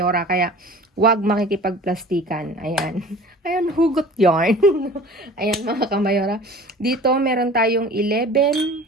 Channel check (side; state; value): both; normal; correlation 0.43